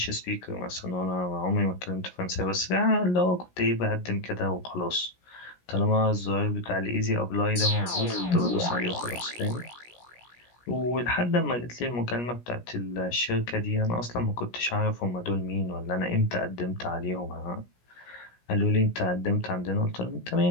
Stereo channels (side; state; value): right; late; 17 ms